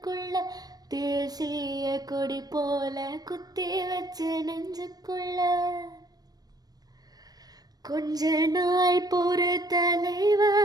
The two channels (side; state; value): left; late; 0.19 ms